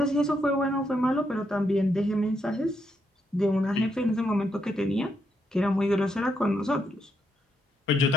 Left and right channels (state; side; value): normal; both; correlation 0.79